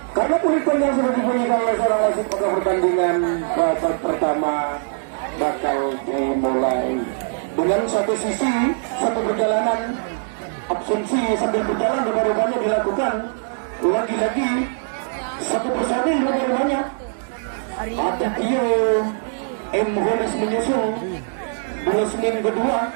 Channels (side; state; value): left; silent; digital silence